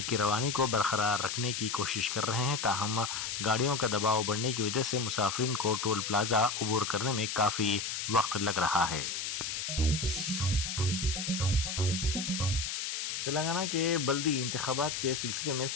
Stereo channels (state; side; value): noise; left; hiss, 3 dB below the sound